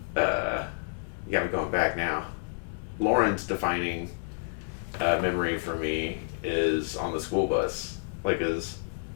yeah, I'm going back now. Lauren's defining memory for me is on the school bus, like as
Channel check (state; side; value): silent; right; 58 dB below the other